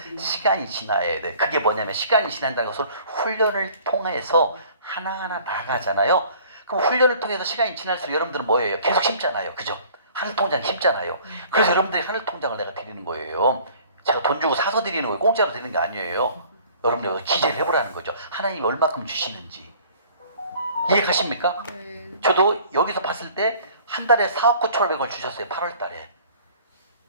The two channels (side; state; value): both; inverted; correlation -0.52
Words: 시간이 지나야 돼. 그게 뭐냐면 시간이 지난다는 것을 훈련을 통해서 하나하나 나가잖아요. 그럼 훈련을 통해서 시간이 지날수록 여러분들은 뭐예요? 계속 심잖아요. 그죠? 하늘통장 심잖아요. 그래서 여러분들이 하늘통장을 내가 드리는 거예요. 제가 돈 주고 사서 드리는 거예요. 공짜로 드리는 게 아니에요. 여러분들 기재를 해보라는 거죠. 하나님이 얼마큼 주시는지. 이해가십니까? 저도 여기서 봤을 때 한 달에 4억 9,500원 주셨어요. 8월 달에.